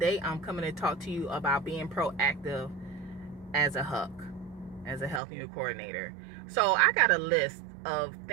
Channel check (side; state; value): left; drops out; at 5.2 s